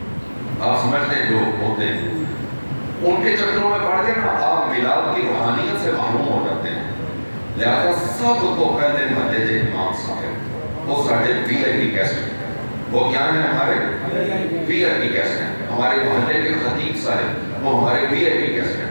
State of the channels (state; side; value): inverted; both; correlation -1.00